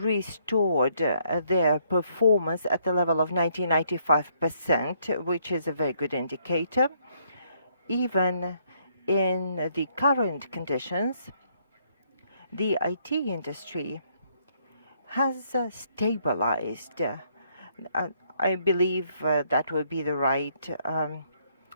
their performance at the level of 95%, which is a very good indicator. Even in the current conditions, the IT industry has stabilized. I believe that would be the right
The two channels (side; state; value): both; inverted; correlation -0.70